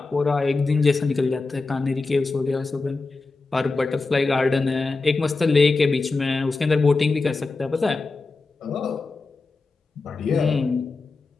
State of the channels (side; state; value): right; quieter; 3.8 dB